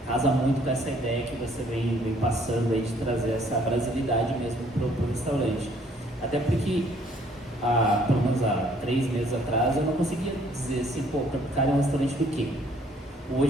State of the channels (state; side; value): normal; both; correlation 0.61